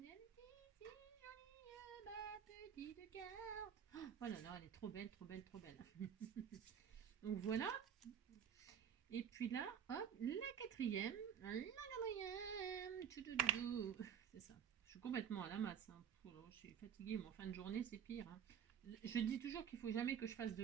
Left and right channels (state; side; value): quieter; left; 8.4 dB